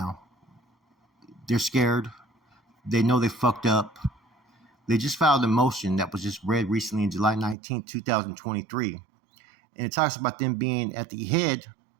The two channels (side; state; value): left; drops out; at 7.6 s